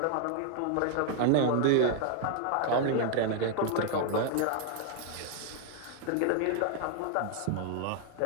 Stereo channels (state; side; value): different; both; correlation 0.00